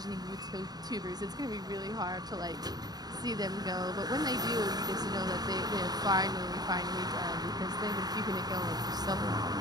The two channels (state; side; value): late; left; 0.19 ms